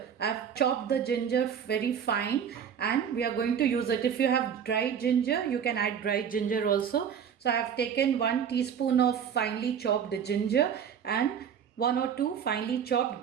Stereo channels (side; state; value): left; quieter; 8.0 dB